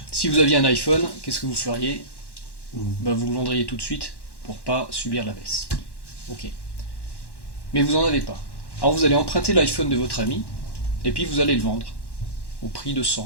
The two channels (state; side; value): late; right; 1.1 ms